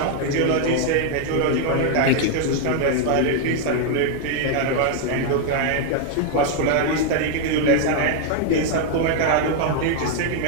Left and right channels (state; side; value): different; both; correlation 0.00